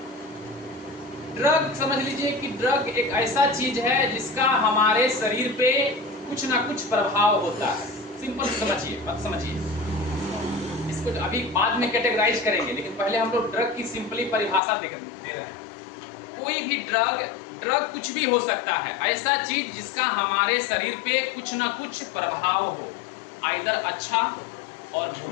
ड्रग समझ लीजिए कि ड्रग एक ऐसा चीज है जिसका हमारे शरीर पे कुछ ना कुछ प्रभाव होता है। सिंपल समझिए इसको अभी बाद में कैटेगराइज करेंगे, लेकिन पहले हम लोग ड्रग की सिंपली परिभाषा दे रहे हैं। कोई भी ड्रग कुछ भी हो सकता है, ऐसा चीज जिसका हमारे शरीर पे कुछ ना कुछ प्रभाव हो, आइदर अच्छा और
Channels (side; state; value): right; drops out; at 14.6 s